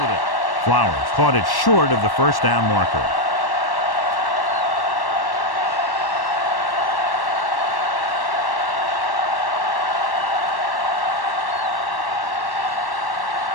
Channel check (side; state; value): right; late; 1.1 ms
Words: with it. Flowers caught it short of the 1st down marker.